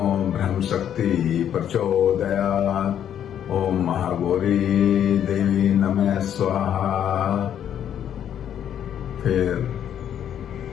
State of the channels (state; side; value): quieter; right; 9.7 dB